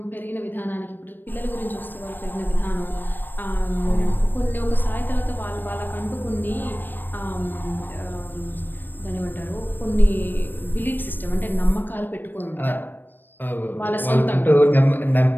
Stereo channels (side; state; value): right; late; 0.092 ms